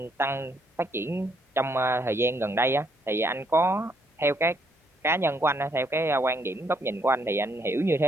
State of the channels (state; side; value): normal; both; correlation 0.72